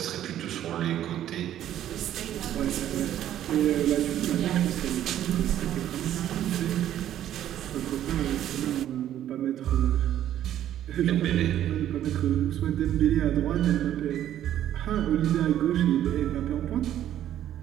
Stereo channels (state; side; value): quieter; left; 11.6 dB